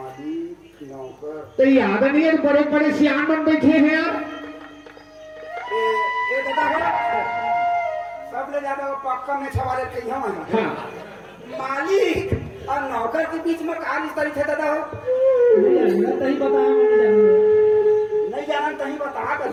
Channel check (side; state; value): both; identical; correlation 1.00